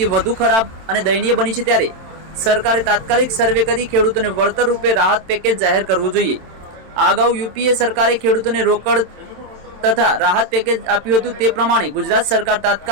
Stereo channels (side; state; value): left; late; 27 ms